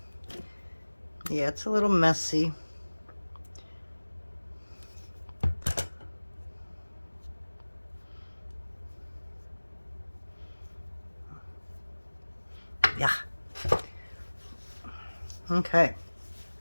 yeah, it's a little messy. Yeah. Okay.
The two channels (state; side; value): inverted; both; correlation -1.00